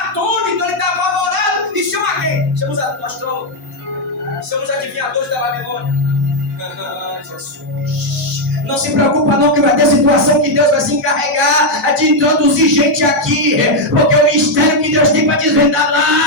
atônito, ele está apavorado. E chama quem? Chama os astrólogos. Chama os adivinhadores da Babilônia. Jesus. Não se preocupa não que vai ter situação que Deus vai se encarregar de introduzir gente aqui. Porque o mistério que Deus tem para desvendar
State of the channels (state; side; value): normal; both; correlation 0.01